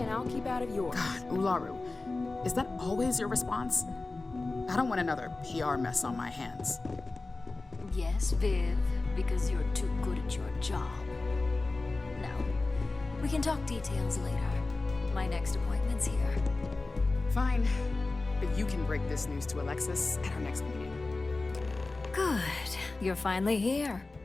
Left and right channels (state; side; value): quieter; right; 3.4 dB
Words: I'll keep out of yours. God, Ularu, is that always your response? I don't want another PR mess on my hands. Yes, Viv, because you're too good at your job. Now, we can talk details later. My next appointment's here. Fine, but you can break this news to Alexis at our next meeting. Good. You're finally here.